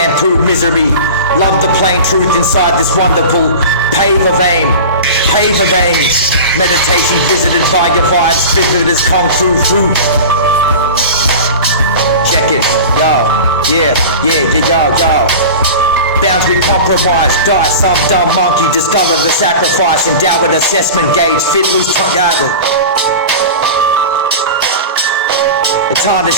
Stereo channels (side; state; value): both; inverted; correlation -0.32